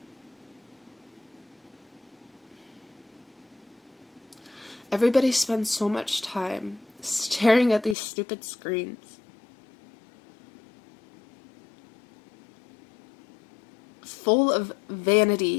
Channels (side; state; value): right; drops out; at 8.0 s